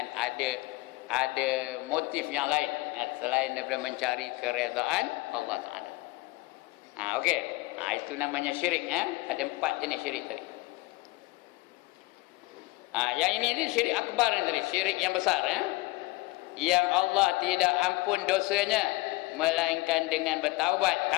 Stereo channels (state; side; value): quieter; right; 21.7 dB